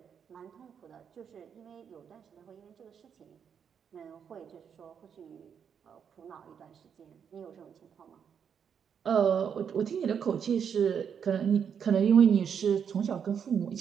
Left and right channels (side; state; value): left; quieter; 7.5 dB